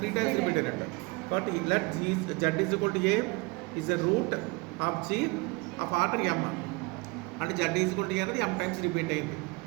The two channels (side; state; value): left; quieter; 25.9 dB